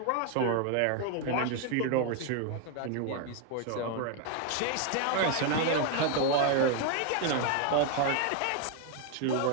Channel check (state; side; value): different; both; correlation 0.01